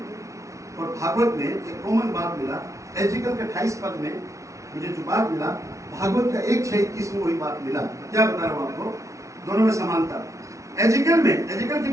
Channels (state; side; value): late; left; 0.15 ms